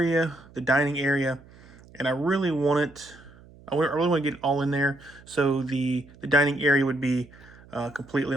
the dining area, and I really want it. I really want to get it all in there. So the dining area would be completely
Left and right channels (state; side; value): noise; right; hum, 23 dB below the sound